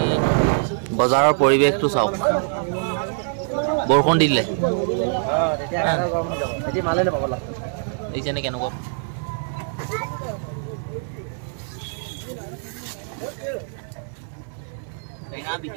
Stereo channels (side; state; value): left; silent; 63 dB below the other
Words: বজাৰৰ পৰিৱেশটো চাওক, বৰষুণ দিলে দেখিছেনে কেনেকুৱা? টেঙা